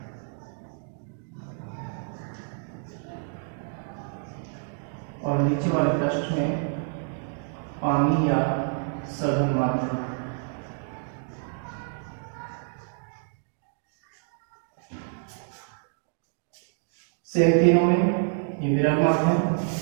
और नीचे वाले पृष्ठ में पानी या सघन माध्यम। सेम तीनों में ये विरल माध्यम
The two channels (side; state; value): left; silent; 59 dB below the other